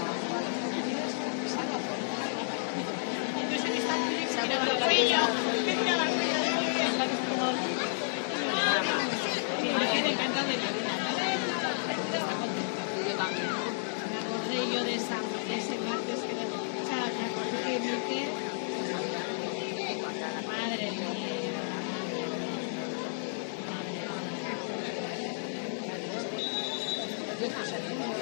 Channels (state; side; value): silent; right; 57 dB below the other